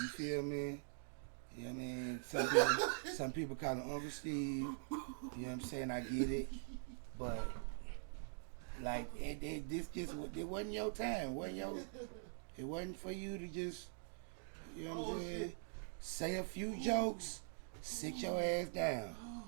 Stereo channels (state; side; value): silent; left; digital silence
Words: feel me? You know what I mean? Some people call him Uncle Steve. You know what I'm saying? I get it. But, like, it wasn't your time. It wasn't for you to just, you know what I'm saying? Say a few jokes, sit your ass down.